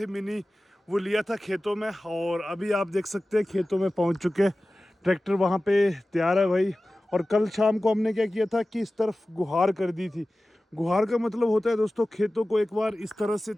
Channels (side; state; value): both; normal; correlation 0.96